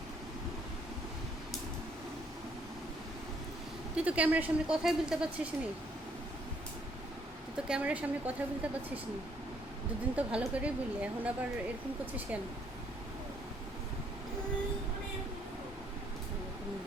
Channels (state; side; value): normal; both; correlation 0.67